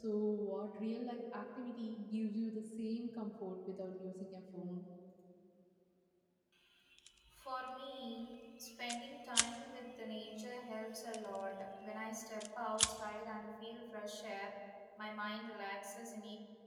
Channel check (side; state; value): both; identical; correlation 1.00